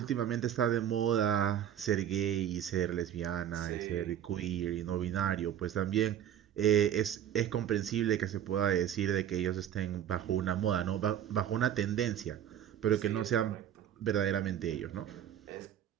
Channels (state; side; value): quieter; left; 10.1 dB